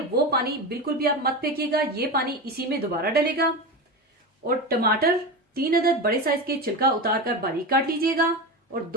वो पानी बिल्कुल भी आप मत फेंकिएगा, ये पानी इसी में दोबारा डलेगा। और टमाटर 3 अदद बड़े साइज के छिलका उतार कर बारीक काट लीजिएगा। और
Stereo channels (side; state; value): both; normal; correlation 0.22